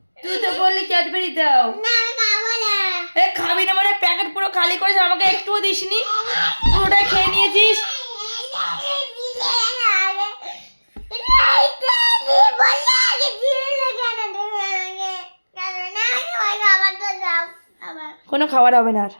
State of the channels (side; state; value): both; inverted; correlation -1.00